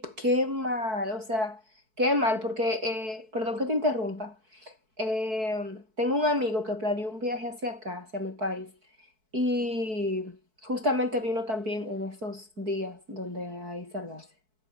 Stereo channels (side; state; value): left; late; 4.6 ms